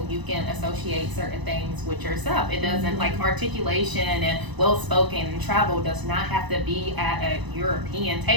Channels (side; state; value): left; late; 1.0 ms